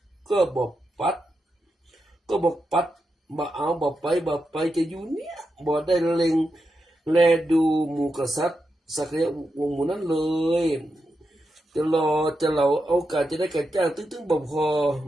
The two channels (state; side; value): normal; both; correlation 0.87